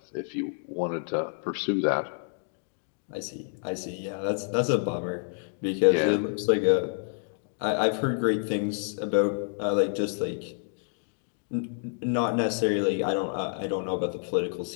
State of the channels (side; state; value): right; silent; digital silence